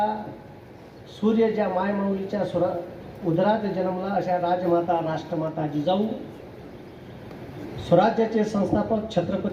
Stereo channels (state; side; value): identical; both; correlation 1.00